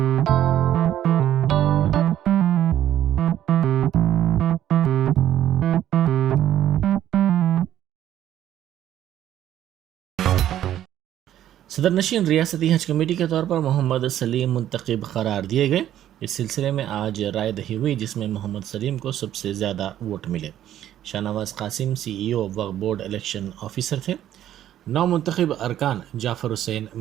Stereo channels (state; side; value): quieter; left; 11.7 dB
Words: صدر نشین ریاستی حج کمیٹی کے طور پر محمد سلیم منتخب قرار دیے گئے۔ اس سلسلے میں آج رائے دہی ہوئی جس میں محمد سلیم کو سب سے زیادہ ووٹ ملے۔ شاہ نواز قاسم CEO وقف بورڈ الیکشن آفیسر تھے۔ 9 منتخب ارکان جعفر حسین